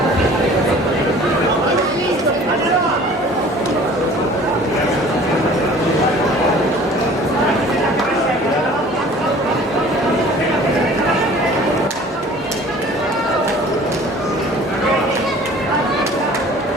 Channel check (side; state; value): both; normal; correlation 0.48